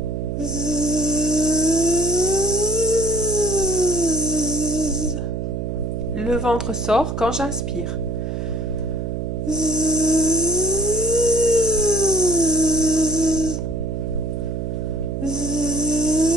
Le ventre sort quand j'inspire.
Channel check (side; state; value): right; noise; hum, 3 dB below the sound